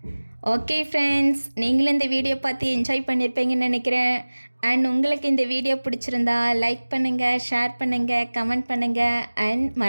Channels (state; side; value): inverted; both; correlation -1.00